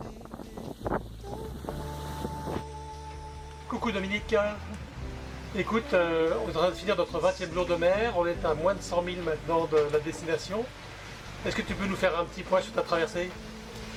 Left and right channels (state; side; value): identical; both; correlation 1.00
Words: Coucou Dominique. Écoute, on est en train de finir notre 20e jour de mer. On est à moins de 100 000 maintenant de la destination. Est-ce que tu peux nous faire un petit point sur ta traversée?